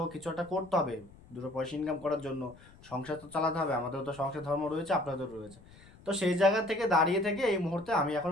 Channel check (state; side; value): noise; left; rumble, 23 dB below the sound